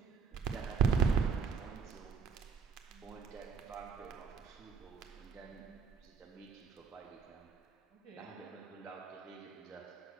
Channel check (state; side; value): quieter; left; 5.9 dB